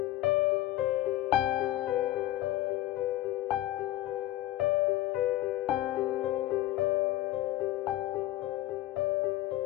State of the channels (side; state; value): right; quieter; 15.3 dB